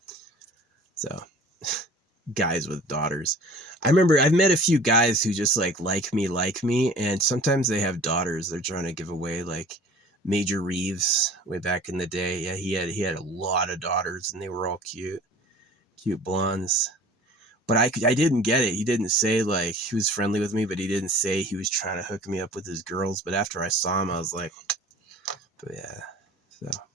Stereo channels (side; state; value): both; normal; correlation 0.45